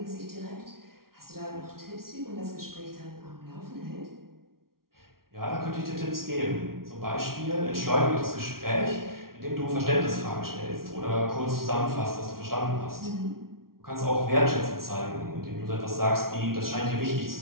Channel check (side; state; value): left; late; 0.93 ms